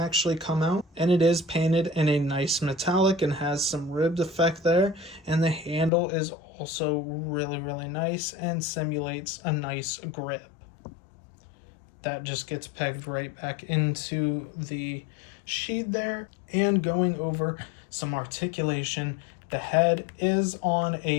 come out. And it is painted in a nice metallic and has some ribbed effect there. And the handle is also really nice and simulates a nice grip. That just gets pegged right back into the sheath there. And going over some articulation, the head is on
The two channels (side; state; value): right; drops out; at 5.9 s